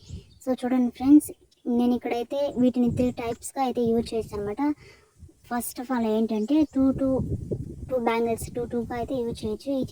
సో చూడండి ఫ్రెండ్స్, నేను ఇక్కడైతే వీటిని 3 టైప్స్గా అయితే యూజ్ చేస్తాను అనమాట. ఫస్ట్ ఆఫ్ ఆల్ ఏంటంటే టూ బ్యాంగిల్స్ 2గా అయితే యూజ్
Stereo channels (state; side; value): identical; both; correlation 1.00